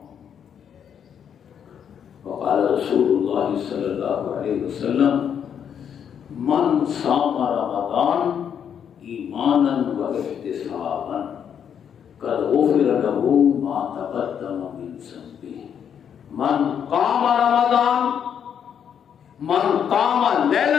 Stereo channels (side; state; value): right; quieter; 8.2 dB